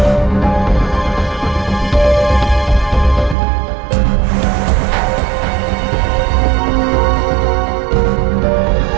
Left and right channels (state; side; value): drops out; left; at 3.4 s